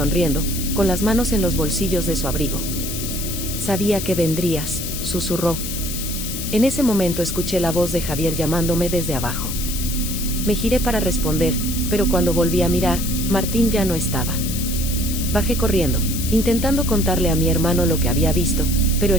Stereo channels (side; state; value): left; noise; hiss, 6 dB below the sound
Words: con las manos en los bolsillos de su abrigo. Sabía que vendrías, susurró. En ese momento escuché la voz de Javier llamándome desde abajo. Me giré para responder, pero cuando volví a mirar, Martín ya no estaba. Bajé corriendo, intentando contarle a mi hermano lo que había visto, pero